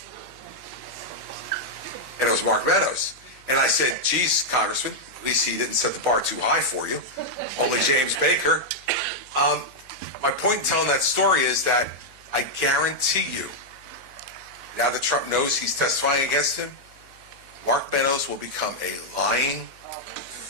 And it was Mark Meadows. And I said, geez, Congressman, at least he didn't set the bar too high for you. Only James Baker. My point in telling that story is that I guarantee you, now that Trump knows he's testifying against him, Mark Meadows will become a lying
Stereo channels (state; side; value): noise; left; hum, 29 dB below the sound